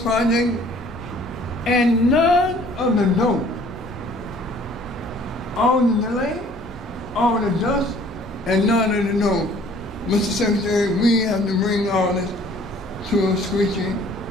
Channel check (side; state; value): both; normal; correlation 0.55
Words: and none of the dough. All the delay, all the dust, and none of the dough. Mr. Secretary, we have to bring all this to a screeching